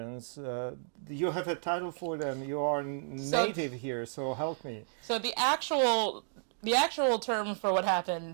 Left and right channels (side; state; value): left; silent; digital silence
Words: You have a title for them. You are So native here, so help me. so the actual term for what